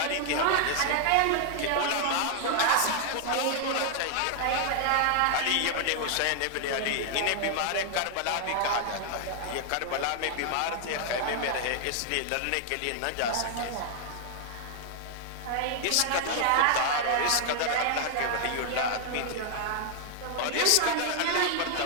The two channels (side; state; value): both; different; correlation 0.00